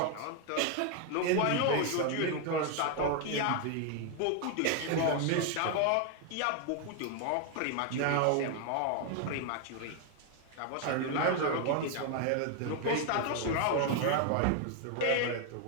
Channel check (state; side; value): different; both; correlation 0.00